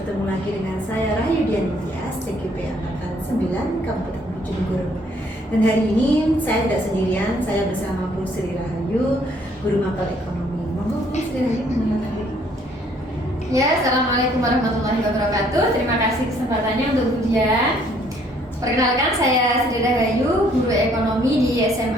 lagi dengan saya Rahayu Dianitya, TKP Angkatan 9 Kabupaten Bojonegoro. Dan hari ini saya tidak sendirian, saya bersama Bu Sri Rahayu, Guru Mapel Ekonomi. Monggo Bu Sri Rahayu mengenalkan diri. Ya, Assalamualaikum warahmatullahi wabarakatuh. Terima kasih kesempatannya untuk Bu Dian. Perkenalkan, saya Sri Rahayu, Guru Ekonomi di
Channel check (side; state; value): both; normal; correlation 0.64